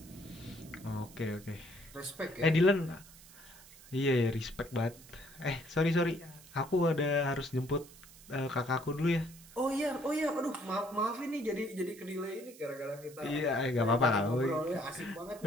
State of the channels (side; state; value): right; noise; hiss, 20 dB below the sound